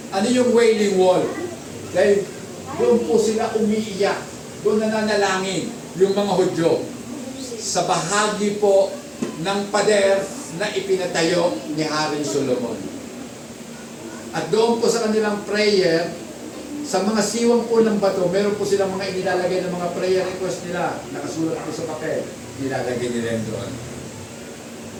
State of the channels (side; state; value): both; identical; correlation 1.00